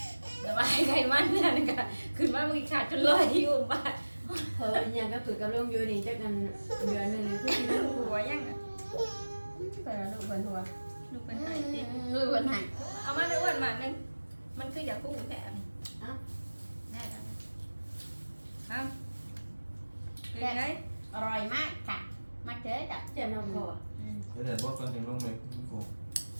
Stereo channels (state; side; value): inverted; both; correlation -1.00